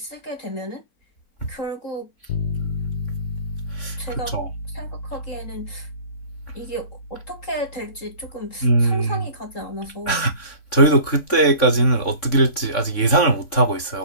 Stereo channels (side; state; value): right; late; 3.6 ms